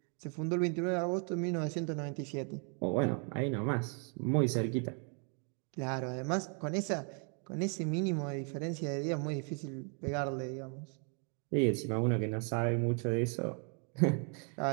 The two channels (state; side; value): quieter; left; 39.8 dB